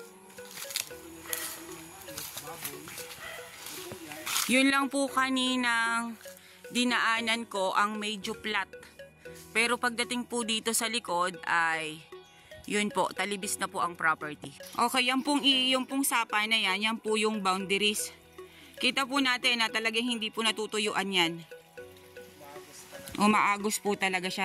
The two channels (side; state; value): both; identical; correlation 1.00